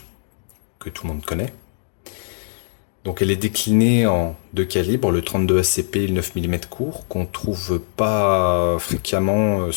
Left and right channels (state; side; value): silent; right; digital silence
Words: que tout le monde connaît. Donc, elle est déclinée en deux calibres, le 32 ACP et le 9 mm court, qu'on trouve pas fréquemment,